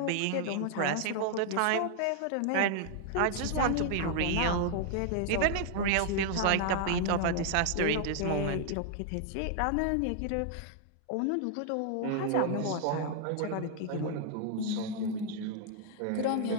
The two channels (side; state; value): both; different; correlation 0.00